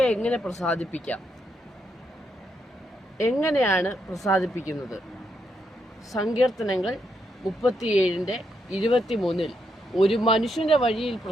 എങ്ങനെ പ്രസാദിപ്പിക്കാം? എങ്ങനെയാണ് പ്രസാദിപ്പിക്കുന്നത്? സങ്കീർത്തനങ്ങൾ 37:23 ഒരു മനുഷ്യന്റെ വഴിയിൽ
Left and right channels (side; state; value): both; normal; correlation 0.79